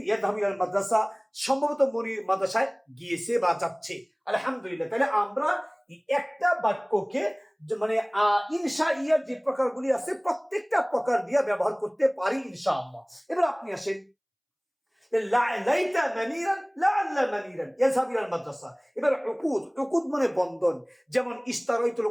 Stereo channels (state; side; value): identical; both; correlation 1.00